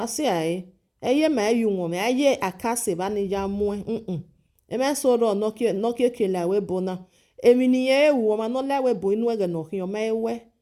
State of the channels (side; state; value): both; identical; correlation 1.00